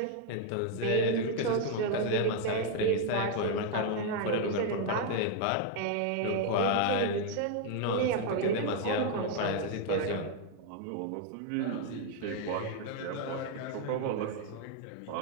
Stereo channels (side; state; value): both; different; correlation 0.00